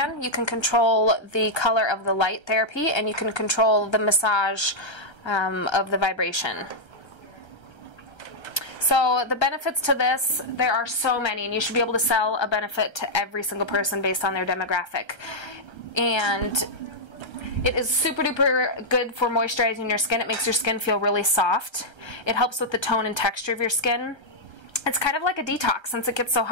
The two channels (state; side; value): late; right; 1.3 ms